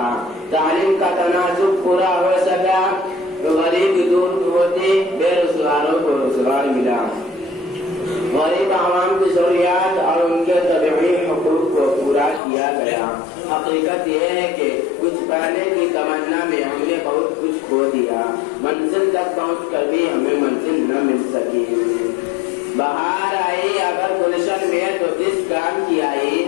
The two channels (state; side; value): drops out; right; at 12.4 s